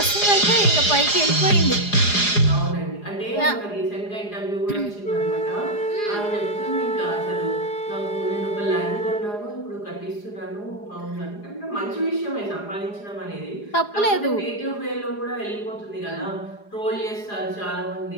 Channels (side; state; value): right; late; 4.9 ms